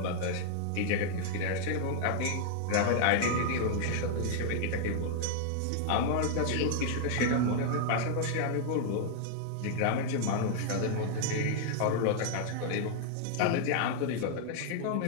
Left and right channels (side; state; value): both; different; correlation 0.00